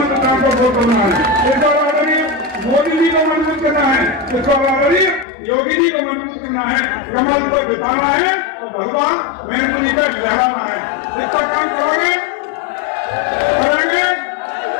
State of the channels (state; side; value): drops out; right; at 5.2 s